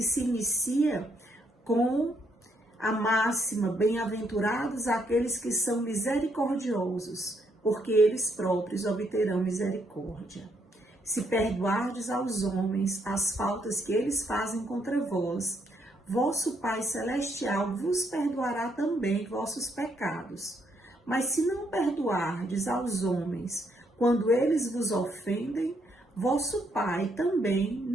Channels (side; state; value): both; normal; correlation 0.74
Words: se inicia com a máxima: bem-aventurados aqueles que são misericordiosos, porque eles próprios obterão misericórdia. Se perdoardes aos homens as faltas que eles fazem contra vós, vosso Pai Celestial vos perdoará também vossos pecados. Mas se não perdoardes aos homens quando eles vos ofendem, vosso Pai também